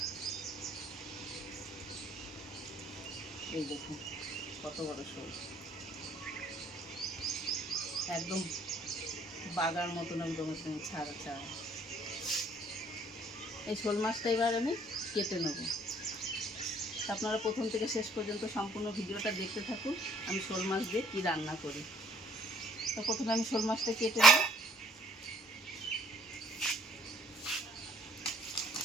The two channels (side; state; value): both; normal; correlation 0.58